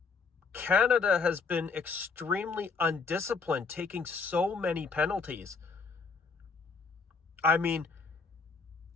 Canada has been extremely undisciplined, taking so many penalties. I mean,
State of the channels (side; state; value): right; quieter; 4.8 dB